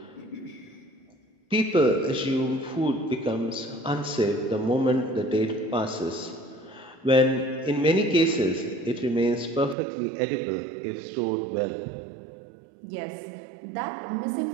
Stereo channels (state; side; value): drops out; left; at 9.8 s